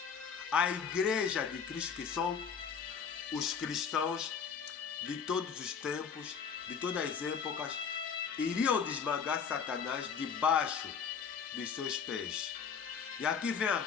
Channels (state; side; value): quieter; right; 6.7 dB